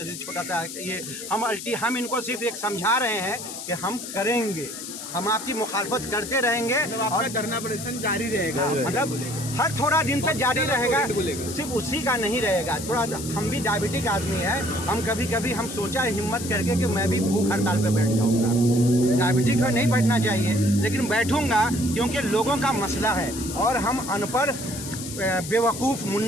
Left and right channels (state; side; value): noise; left; hiss, 9 dB below the sound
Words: छोटा सा ये हम इनको सिर्फ एक समझा रहे हैं कि हम करेंगे, हम आपकी मुखालफत करते रहेंगे, और धरना प्रदर्शन जारी रहेगा। मतलब हर थोड़ा दिन तक जारी रहेगा, सिर्फ उसी का नहीं रहेगा। थोड़ा हम भी डायबिटिक आदमी है, हम कभी कभी हम सोचा है हिम्मत करके कि मैं भी भूख हड़ताल पे बैठ जाऊंगा। डायबिटिक है, नहीं बैठना चाहिए, लेकिन बैठूंगा क्योंकि लोगों का मसला है, और हम अनपढ़ बेवकूफ़